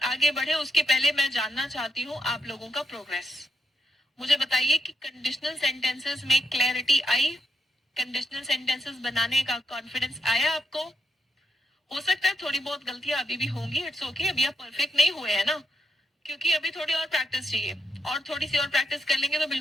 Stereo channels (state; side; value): normal; both; correlation 0.82